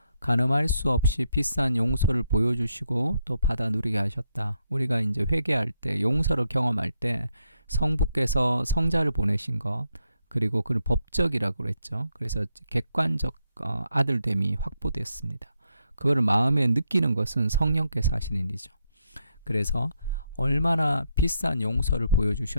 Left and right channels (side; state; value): both; inverted; correlation -0.79